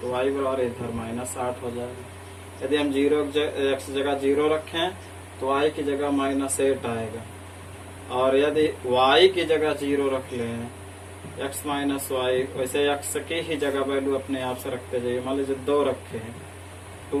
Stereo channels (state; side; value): identical; both; correlation 1.00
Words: y बराबर इधर -8 हो जाएगा। यदि हम 0 x जगह 0 रखें तो y की जगह -8 आएगा। और यदि y की जगह 0 रख लें, x माइनस वाई, वैसे x की ही जगह वैल्यू अपने आप से रखते जाइए। मान लीजिए 2 रखे हैं,